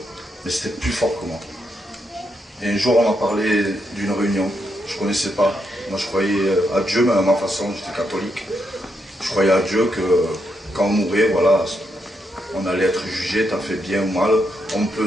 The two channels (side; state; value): both; normal; correlation 0.81